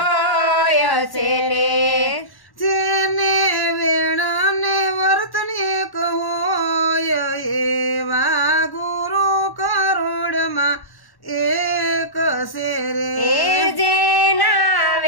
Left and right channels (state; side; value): late; right; 1.1 ms